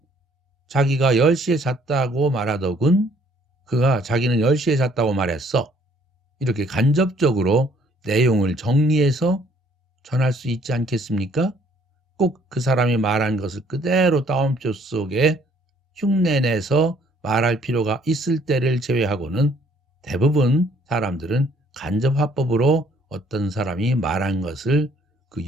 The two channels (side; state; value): both; normal; correlation 0.61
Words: 자기가 10시에 잤다고 말하더군 그가 자기는 10시에 잤다고 말했어. 이렇게 간접적으로 내용을 정리해서 전할 수 있지 않겠습니까? 꼭 그 사람이 말한 것을 그대로 따옴표 속에 흉내내서 말할 필요가 있을 때를 제외하고는 대부분 사람들은 간접 화법으로 어떤 사람이 말한 것을 그